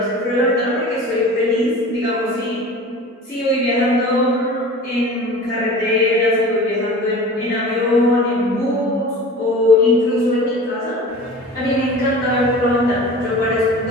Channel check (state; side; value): normal; both; correlation 0.39